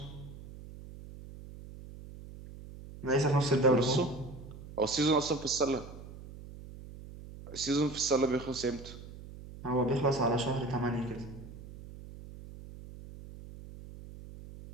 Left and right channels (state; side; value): noise; right; hum, 15 dB below the sound